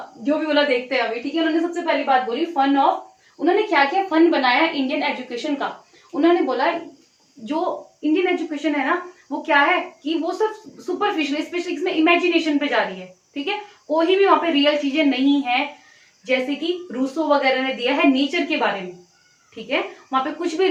जो भी बोला देखते हैं अभी, ठीक है। उन्होंने सबसे पहली बात बोली फन ऑफ, उन्होंने क्या क्या फन बनाया इंडियन एजुकेशन का। उन्होंने बोला जो इंडियन एजुकेशन है ना वो क्या है कि वो सब सुपरफिशियल, स्पेशली इसमें इमेजिनेशन पे जा रही है, ठीक है। कोई भी वहां पे रियल चीजें नहीं है, जैसे कि रूसो वगैरह ने दिया है नेचर के बारे में, ठीक है, वहां पे कुछ भी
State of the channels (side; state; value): both; identical; correlation 1.00